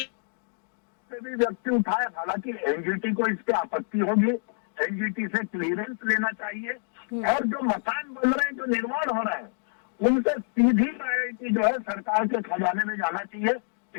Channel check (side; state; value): right; silent; digital silence